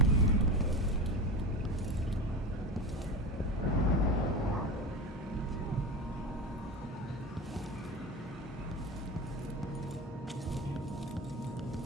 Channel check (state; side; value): normal; both; correlation 0.25